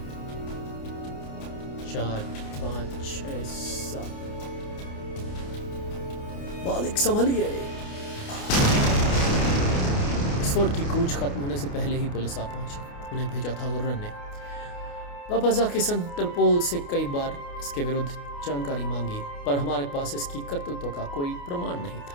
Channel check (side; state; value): right; late; 28 ms